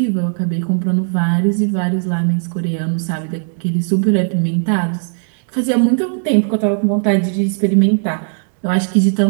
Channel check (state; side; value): silent; left; digital silence